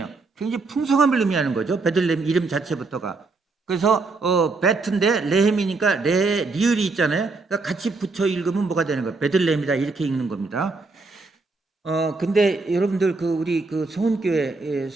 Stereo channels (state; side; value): quieter; left; 3.8 dB